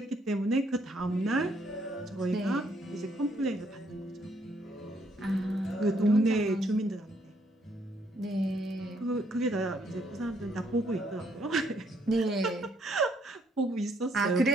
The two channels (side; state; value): both; normal; correlation 0.70